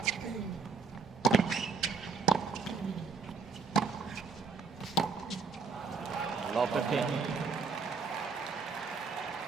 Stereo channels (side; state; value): left; quieter; 5.2 dB